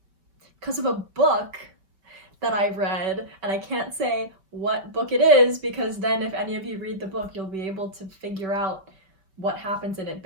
a book that I read, and I can't say what book it is because then if any of you read the book, you'll be able to figure out what happens in it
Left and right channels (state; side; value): late; left; 5.1 ms